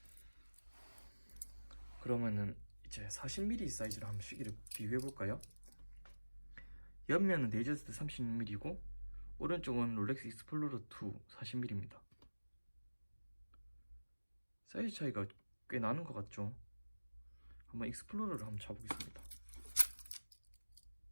그러면은 이제 40mm 사이즈로 한번 시계를 비교해 볼까요? 옆면은 데이저스트 36mm고 오른쪽은 롤렉스 익스플로러 2 40mm입니다. 사이즈 차이가 꽤 나는 것 같죠? 한번 익스플로러를 한번 잡아보겠습니다.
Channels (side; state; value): both; inverted; correlation -1.00